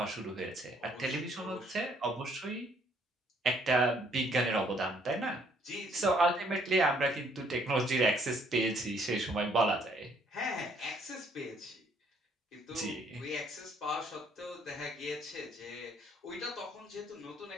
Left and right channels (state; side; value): normal; both; correlation 0.65